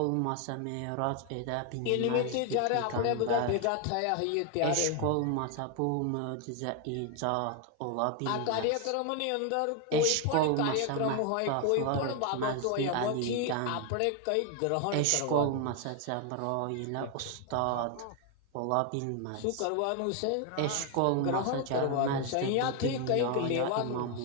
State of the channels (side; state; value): both; different; correlation 0.01